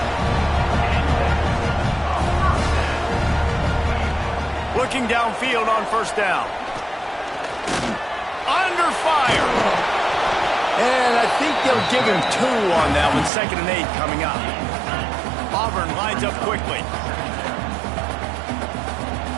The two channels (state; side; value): drops out; left; at 13.3 s